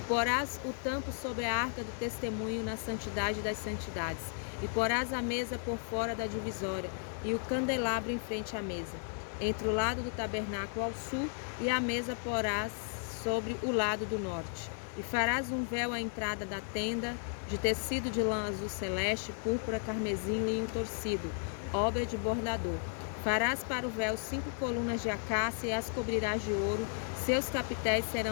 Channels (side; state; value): right; silent; 55 dB below the other